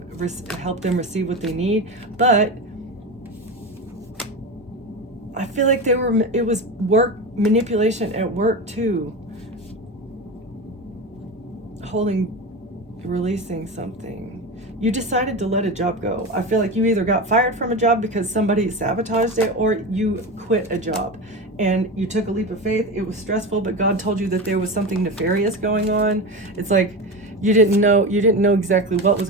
helped them receive what they need. But I feel like it was work manipulation at work too. Releasing something. You decided to let a job go. I feel like you either got fired from a job because somebody sabotaged it, or you quit a job and you took a leap of faith. It was stressful, but God told you that there was something nefarious going on. It's like you didn't know exactly what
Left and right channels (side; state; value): both; normal; correlation 0.23